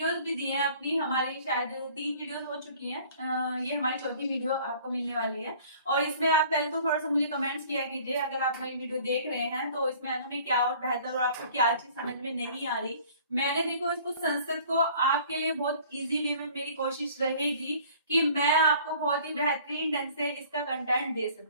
भी दी है अपनी। हमारी शायद 3 वीडियोस हो चुकी हैं। ये हमारी चौथी वीडियो आपको मिलने वाली है। और इसमें आप पहले तो थोड़ा सा मुझे कमेंट्स किया कीजिए, अगर आप मेरी वीडियो देख रहे हैं तो इसमें हमें क्या और बेहतर और आपको क्या चीज समझ में नहीं आ रही। मैंने देखो इसको संस्कृत को आपके लिए बहुत इजी वे में मेरी कोशिश रहेगी कि मैं आपको बहुत ही बेहतरीन ढंग से इसका कंटेंट दे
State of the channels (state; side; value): inverted; both; correlation -0.51